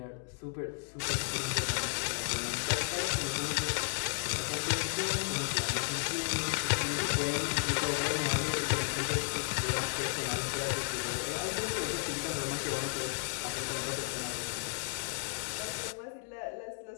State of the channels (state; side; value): silent; right; 55 dB below the other